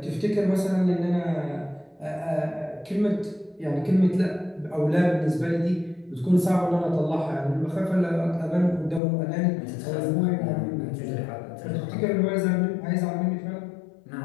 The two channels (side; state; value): right; drops out; at 9.0 s